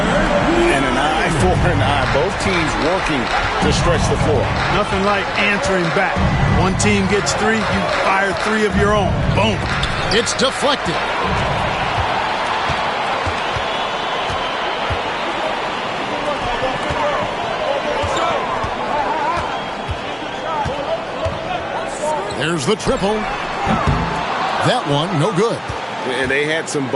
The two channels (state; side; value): identical; both; correlation 1.00